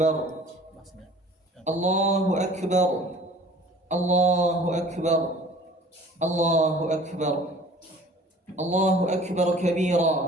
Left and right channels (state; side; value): normal; both; correlation 0.49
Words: الله أكبر الله أكبر الله أكبر الله أكبر